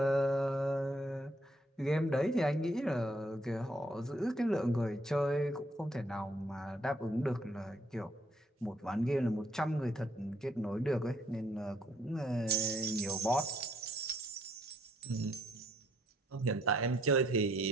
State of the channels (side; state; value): both; normal; correlation 0.69